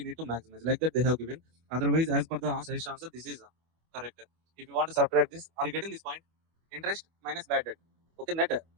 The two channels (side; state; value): left; late; 25 ms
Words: need to maximize. Like that they have given. Otherwise, as per the suggestion answer, this is correct. If you want to subtract this, are you getting this point? Interest minus bad debt. Okay, net